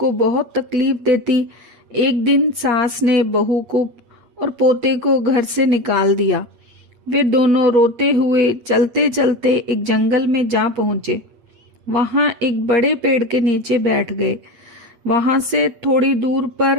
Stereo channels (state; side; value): late; left; 8.5 ms